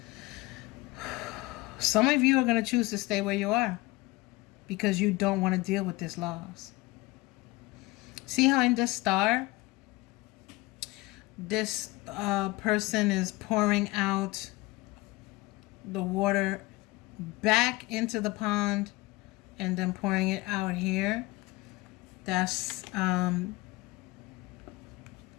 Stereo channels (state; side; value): quieter; right; 21.4 dB